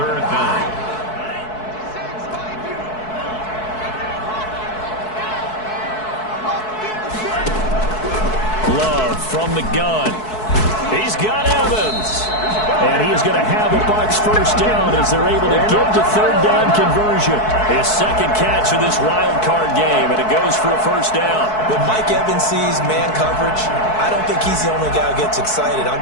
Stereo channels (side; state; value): right; late; 4.6 ms